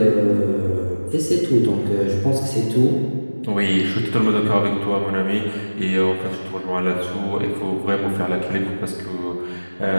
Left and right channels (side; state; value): both; inverted; correlation -1.00